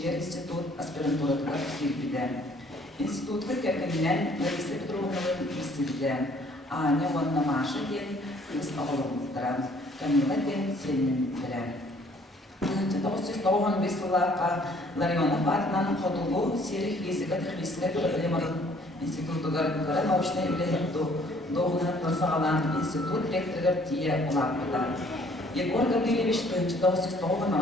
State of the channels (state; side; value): normal; both; correlation 0.59